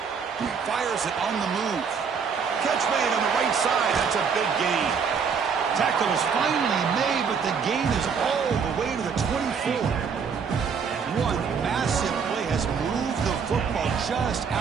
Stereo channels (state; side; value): quieter; left; 6.2 dB